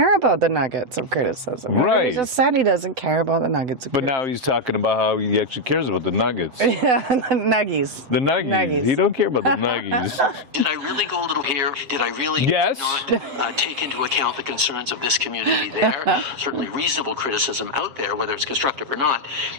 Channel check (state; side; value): late; left; 8.0 ms